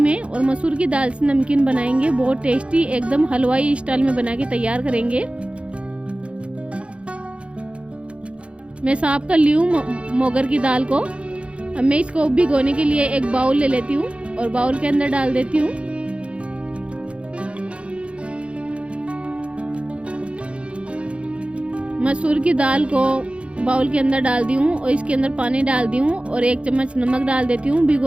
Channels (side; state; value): left; late; 0.060 ms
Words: और मसूर की दाल से नमकीन बनाएंगे। बहुत टेस्टी, एकदम हलवाई स्टाइल में बना के तैयार करेंगे। मैं साफ कर ली हूँ मोगर की दाल को। अब मैं इसको भिगोने के लिए एक बाउल ले लेती हूँ और बाउल के अंदर डाल देती हूँ मसूर की दाल को। बाउल के अंदर डाल दी हूँ और इसके अंदर पानी डाल दी हूँ और 1 चम्मच नमक डाल देती हूँ।